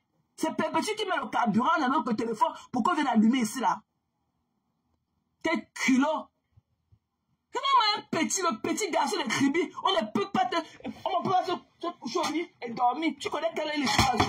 C'est Perpétue qui met le carburant dans notre téléphone pour qu'on vienne allumer ici là. Quel culot. Le petit garçon de Kribi, on ne peut pas se coucher au lit et dormir. Tu connais quelle est l'histoire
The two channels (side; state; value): both; identical; correlation 1.00